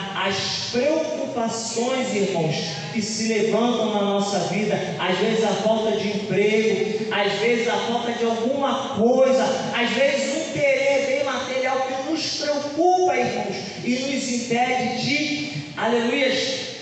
As preocupações, irmãos, que se levantam na nossa vida, às vezes a falta de emprego, às vezes a falta de alguma coisa, às vezes um querer bem material que nos preocupa, irmãos, e nos impede de, aleluias,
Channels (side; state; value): both; identical; correlation 1.00